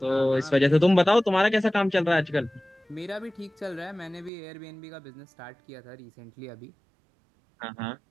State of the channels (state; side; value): drops out; left; at 4.3 s